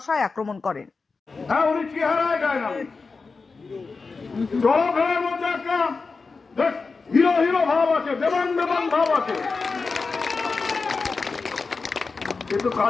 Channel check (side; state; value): right; quieter; 4.4 dB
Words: আক্রমণ করেন। হিরো হিরো ভাব আছে, দেবান দেবান ভাব আছে, কিন্তু